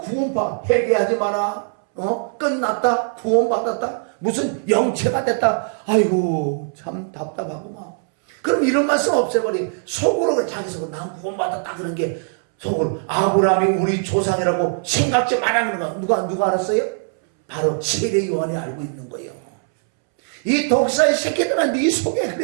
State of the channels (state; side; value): silent; left; 65 dB below the other